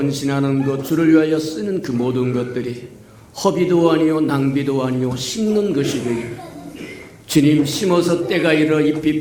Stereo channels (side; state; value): both; identical; correlation 1.00